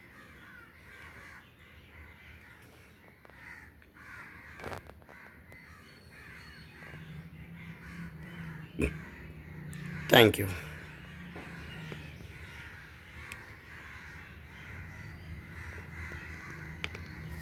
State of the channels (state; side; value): identical; both; correlation 1.00